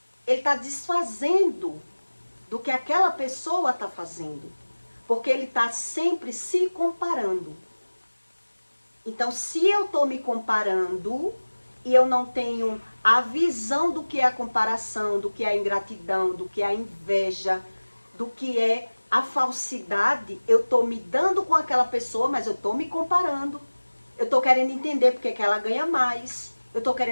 Ele está desfazendo do que aquela pessoa está fazendo. Porque ele está sempre se comparando. Então, se eu estou me comparando e eu não tenho a visão do que é a comparação, do que é a ingratidão, do que é a inveja, do que é a falsidade, eu estou me dando com aquela pessoa, mas eu estou me comparando. Eu estou querendo entender porque que ela ganha mais. Eu estou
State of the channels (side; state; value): both; inverted; correlation -1.00